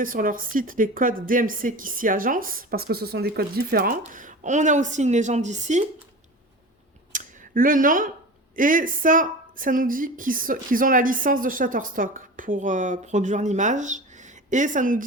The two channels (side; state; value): both; normal; correlation 0.32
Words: sur leur site, les codes DMC qui s'y agencent, parce que ce sont des codes différents. On a aussi une légende ici. Le nom, et ça nous dit qu'ils ont la licence de Shutterstock pour produire l'image. Et ça nous